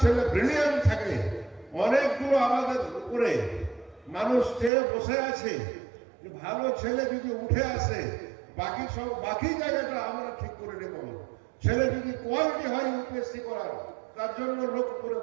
ছেলে ব্রিলিয়ান্ট থাকে, অনেকগুলো আমাদের উপরে মানুষ চেয়ে বসে আছে, ভালো ছেলে যদি উঠে আসে, বাকি জায়গাটা আমরা ঠিক করে নেব। ছেলে যদি কোয়ালিটি হয় ইউপিএসসি করার, তার জন্য লোক উপরে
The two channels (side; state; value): left; drops out; at 4.7 s